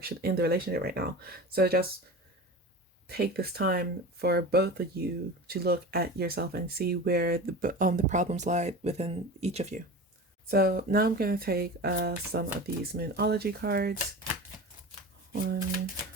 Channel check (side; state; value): both; normal; correlation 0.32